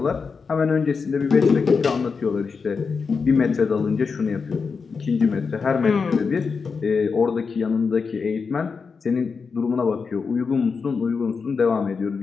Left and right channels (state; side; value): quieter; right; 5.2 dB